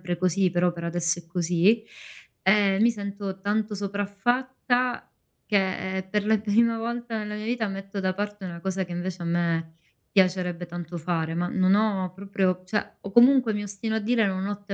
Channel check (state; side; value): identical; both; correlation 1.00